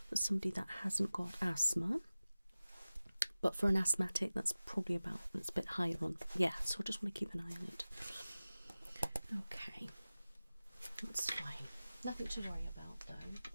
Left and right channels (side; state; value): both; inverted; correlation -0.96